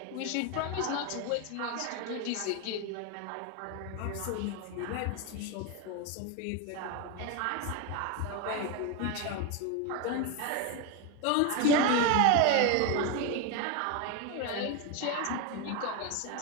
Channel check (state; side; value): different; both; correlation 0.02